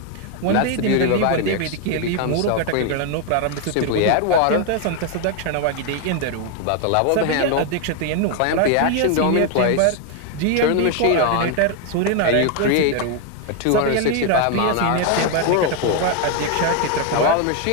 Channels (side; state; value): both; different; correlation 0.01